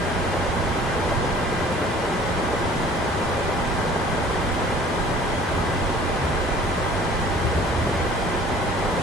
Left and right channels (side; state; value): both; normal; correlation 0.50